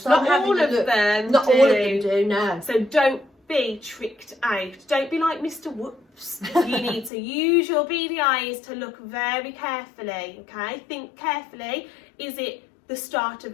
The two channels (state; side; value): drops out; right; at 7.1 s